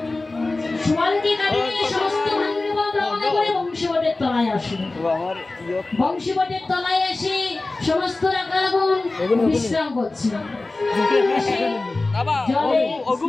সুবলকে কাটিয়ে সমস্ত ভান্ডব রওনা করে বংশীবটের তলায় আসে। বংশীবটের তলায় এসে সমস্ত রাখালগণ বিশ্রাম করছে।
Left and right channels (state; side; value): quieter; right; 3.2 dB